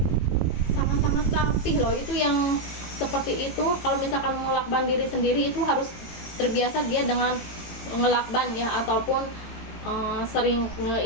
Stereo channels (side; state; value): right; late; 18 ms